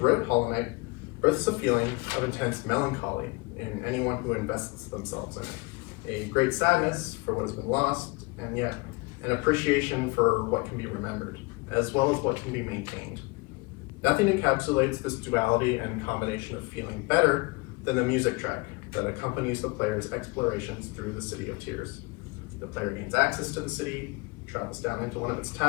Hollow Knight births a feeling of intense melancholy in anyone who invests themselves in it. A great sadness for what has been lost, and yet an appreciation for what can be remembered, as well as what can be maintained. Nothing encapsulates this duality and combination of feeling better than the music track that accompanies the player's explorations through the City of Tears. The player gains access to the city, travels down into one of its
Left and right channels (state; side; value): quieter; right; 26.7 dB